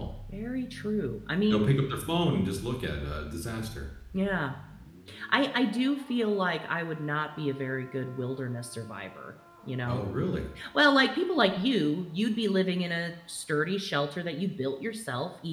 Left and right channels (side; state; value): both; identical; correlation 1.00